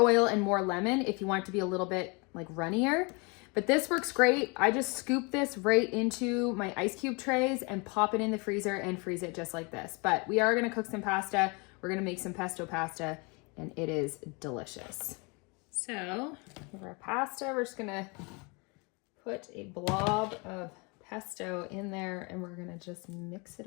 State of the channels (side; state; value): right; quieter; 30.2 dB